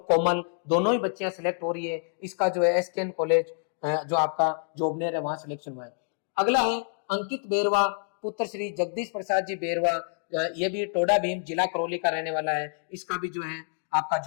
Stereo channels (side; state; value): right; silent; 59 dB below the other